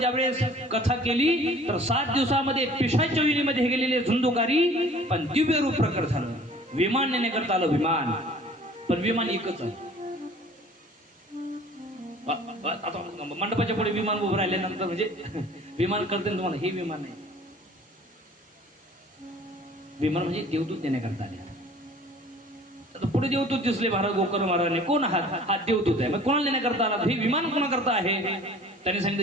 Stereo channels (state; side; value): normal; both; correlation 0.49